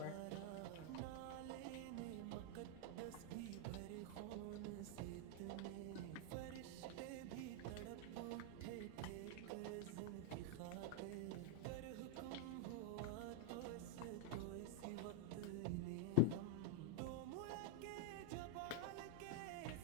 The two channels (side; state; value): both; different; correlation 0.01